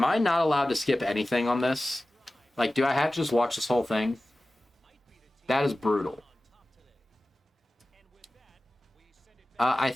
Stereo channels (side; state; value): both; normal; correlation 0.96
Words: I not allowed to skip anything on this? Like, do I have to just watch this whole thing? That is brutal. I